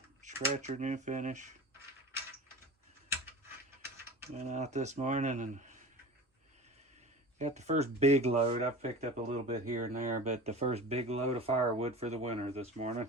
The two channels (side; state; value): both; normal; correlation 0.34